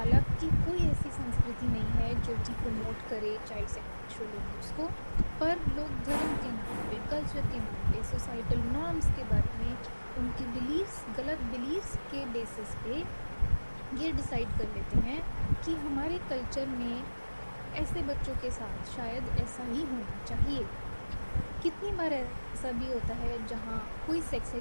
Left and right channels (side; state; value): both; inverted; correlation -1.00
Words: कोई ऐसी संस्कृति नहीं है जो कि प्रमोट करे चाइल्ड सेक्सुअल अब्यूज़ को, पर लोग धर्म के नाम पे, कल्चर के नाम पे, सोसाइटल नॉर्म्स के बारे में, उनके बिलीव्स, गलत बिलीव्स के बेसिस पे ये डिसाइड कर लेते हैं कि हमारे कल्चर में ऐसे बच्चों के साथ शायद ऐसा ही होना चाहिए। कितनी बार ऐसा भी होता है जहाँ कोई सेक्स